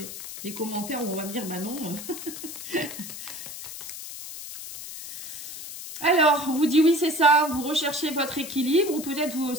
des commentaires où on va me dire, bah non. Alors, on vous dit oui, c'est ça, vous recherchez votre équilibre, ou peut-être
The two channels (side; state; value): left; noise; hiss, 10 dB below the sound